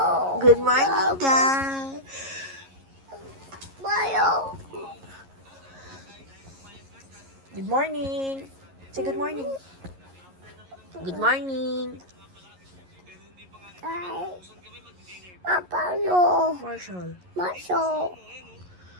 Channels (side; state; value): left; late; 11 ms